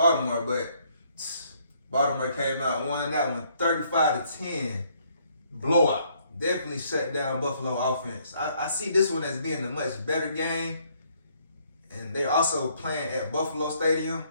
but Baltimore came out and won that one 35-10. Blowout. Definitely shut down Buffalo offense. I see this one as being a much better game. And they're also playing at Buffalo Stadium.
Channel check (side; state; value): both; inverted; correlation -0.67